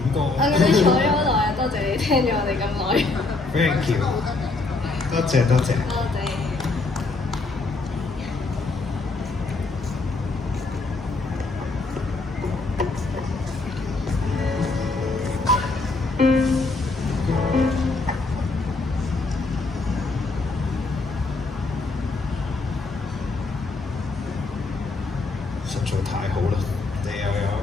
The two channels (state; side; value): quieter; right; 3.5 dB